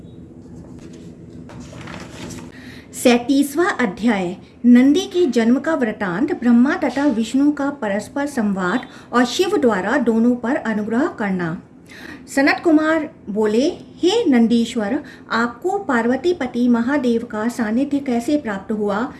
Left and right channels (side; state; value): both; identical; correlation 1.00